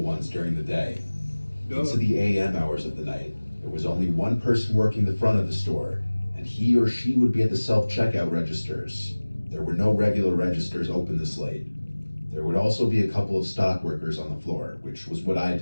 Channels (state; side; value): inverted; both; correlation -1.00